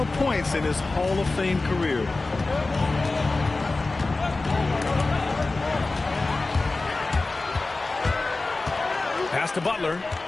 points in his Hall of Fame career. Pass to Butler.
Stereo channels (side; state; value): right; quieter; 3.4 dB